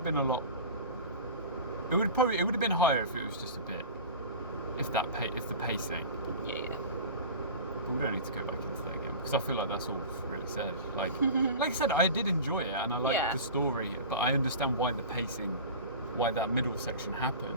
been a lot. It would have been higher if it was just a bit, if the pacing. Yeah. But we don't need to go back into that again because I feel like that's all really said. Like I said, I did enjoy it and I liked the story, but I understand why that middle section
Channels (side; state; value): both; inverted; correlation -0.34